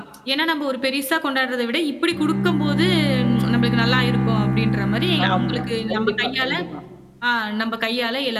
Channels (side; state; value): both; identical; correlation 1.00